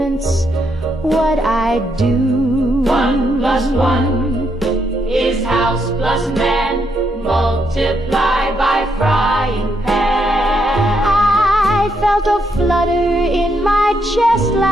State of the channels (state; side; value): normal; both; correlation 0.78